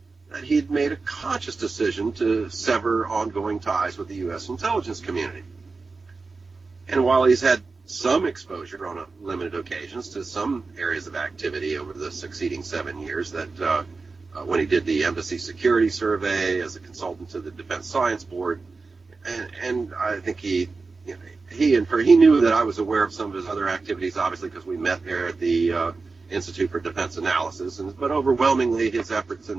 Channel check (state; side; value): quieter; left; 4.1 dB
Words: that he had made a conscious decision to sever ongoing ties with the U.S. intelligence community. And while he's had some exposure on limited occasions to some areas of activity over the succeeding 7 years, that when he did the Embassy Security Survey as a consultant to the Defense Science Board, and I think he knew that I was aware of some of his other activities, obviously, because we met there at the Institute for Defense Analysis, but overwhelmingly his efforts in